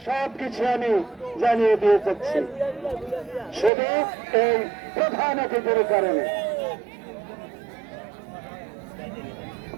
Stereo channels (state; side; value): drops out; left; at 3.7 s